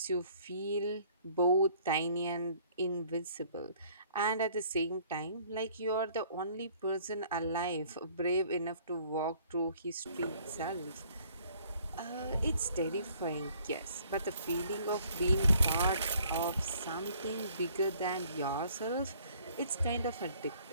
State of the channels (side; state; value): both; inverted; correlation -0.59